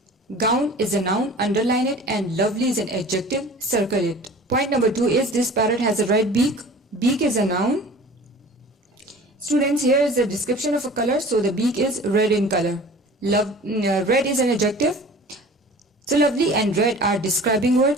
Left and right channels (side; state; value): both; normal; correlation 0.43